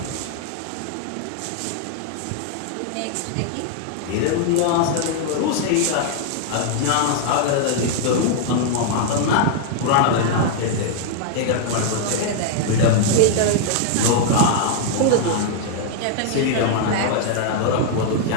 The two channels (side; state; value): both; different; correlation -0.01